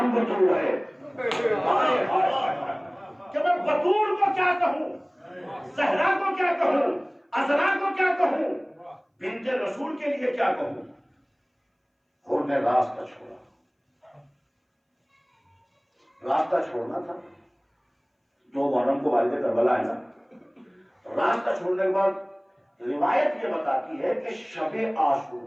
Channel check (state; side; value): identical; both; correlation 1.00